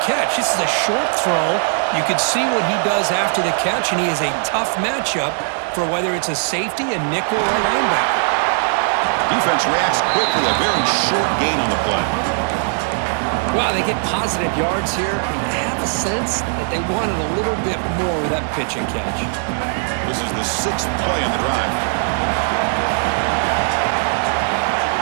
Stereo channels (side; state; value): left; silent; 64 dB below the other